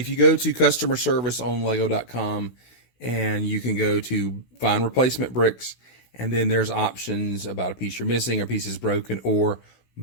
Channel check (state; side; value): late; right; 16 ms